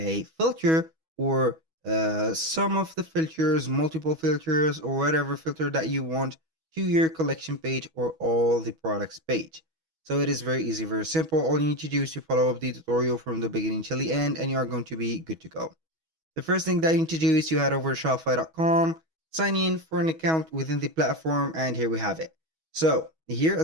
filter or some of the filters, multiple filters or whatever filter that you want to your collection page or all the products page. So it is very easy, very simple. All you need to do is to follow up the tutorial from the beginning till the end and you are going to be good to go. The first thing that you need to do is to head over to Shopify.com, sign in for an account within the platform, and here we have it. So here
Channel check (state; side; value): late; left; 6.3 ms